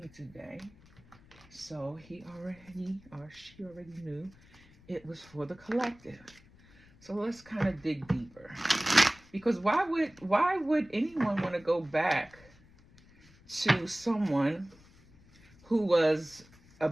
today, so he already, or she already knew it was for the collective. So let's kind of dig deeper, because why would anyone want to go back to someone who was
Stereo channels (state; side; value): noise; left; rumble, 26 dB below the sound